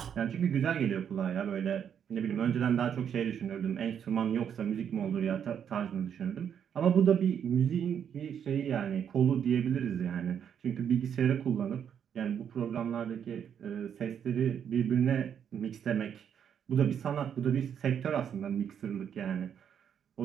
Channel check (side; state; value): left; quieter; 8.4 dB